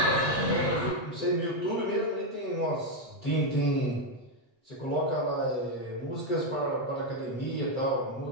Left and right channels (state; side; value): late; right; 8.1 ms